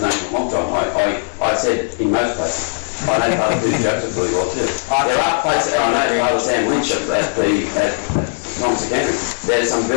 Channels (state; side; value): silent; right; 67 dB below the other